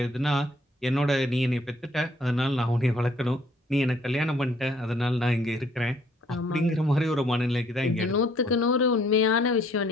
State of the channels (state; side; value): normal; both; correlation 0.63